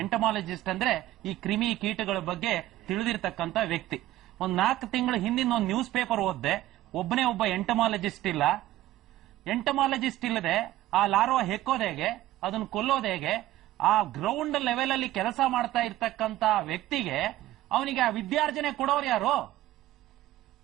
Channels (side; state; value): left; quieter; 15.2 dB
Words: ಎಂಟಮಾಲಜಿಸ್ಟ್ ಅಂದ್ರೆ ಈ ಕ್ರಿಮಿ ಕೀಟಗಳ ಬಗ್ಗೆ ತಿಳಿದಿರ್ತಕ್ಕಂತ ವ್ಯಕ್ತಿ. ಒಂದ್ 4 ತಿಂಗಳ ಹಿಂದಿನ ಒಂದು ನ್ಯೂಸ್ ಪೇಪರ್ ಓದ್ದೆ, ಒಬ್ಬನೇ ಒಬ್ಬ ಎಂಟಮಾಲಜಿಸ್ಟ್ ಇಲ್ಲ. ಎಂಟಮಾಲಜಿಸ್ಟ್ ಇಲ್ಲದೆ ಆ ಲಾರ್ವಾ ಹೆಕ್ಕೋದು ಹೇಗೆ, ಅದನ್ನು ಕೊಲ್ಲೋದು ಹೇಗೆ, ಆ ಗ್ರೌಂಡ್ ಲೆವೆಲ್ ಅಲ್ಲಿ ಕೆಲಸ ಮಾಡ್ತಾ ಇರ್ತಕ್ಕಂತ ವ್ಯಕ್ತಿಗೆ ಅವನಿಗೆ ಆ ವಿದ್ಯಾರ್ಜನೆ ಕೊಡೋರು ಯಾರು?